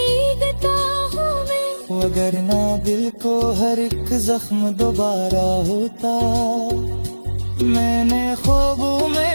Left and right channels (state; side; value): inverted; both; correlation -1.00